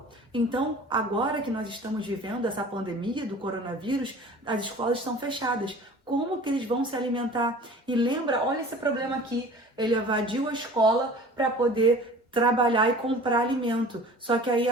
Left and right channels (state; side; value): normal; both; correlation 0.44